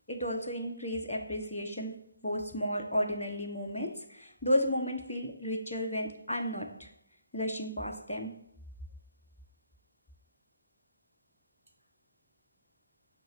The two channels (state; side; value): inverted; both; correlation -0.71